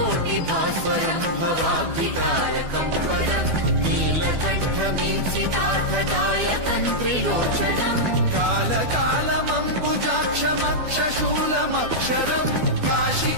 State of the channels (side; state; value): left; late; 12 ms